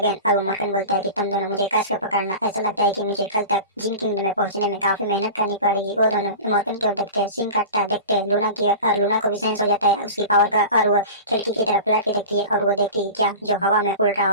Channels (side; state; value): both; inverted; correlation -0.33